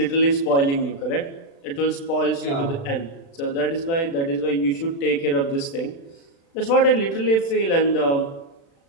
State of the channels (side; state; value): right; late; 36 ms